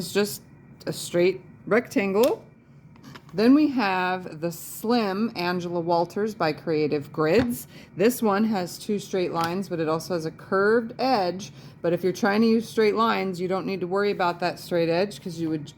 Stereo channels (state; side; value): identical; both; correlation 1.00